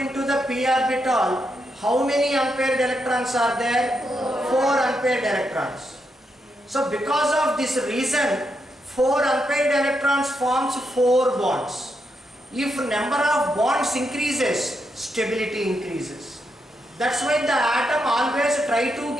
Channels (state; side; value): normal; both; correlation 0.82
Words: into the p orbital, how many unpaired electrons are there? 4 unpaired electrons. So because of this reason 4 unpaired electrons forms 4 bonds. If number of bonds increases, stability increases. That's why the atom always try to